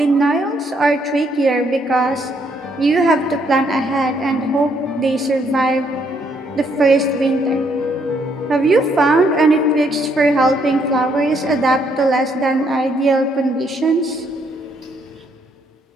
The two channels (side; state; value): both; normal; correlation 0.71